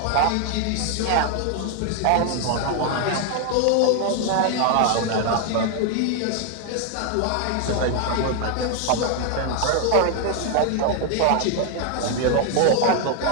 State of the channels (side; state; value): both; different; correlation 0.00